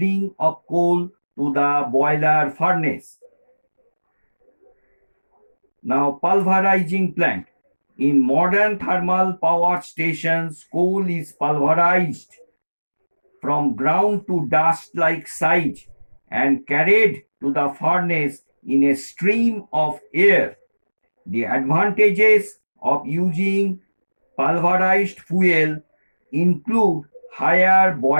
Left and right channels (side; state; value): both; inverted; correlation -1.00